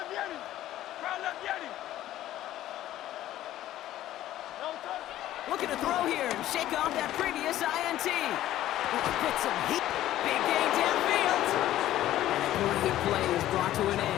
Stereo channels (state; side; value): quieter; right; 13.6 dB